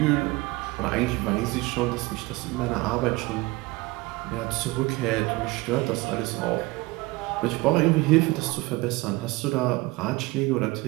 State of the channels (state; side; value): quieter; left; 22.0 dB